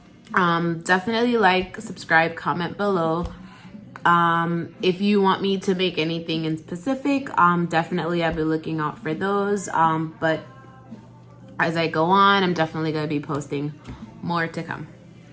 Definitely like, subscribe, comment below. If you want me to make anything in specific, definitely I'll be looking out for those. But as I go on, I'm definitely going to be posting more to come.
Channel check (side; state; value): both; identical; correlation 1.00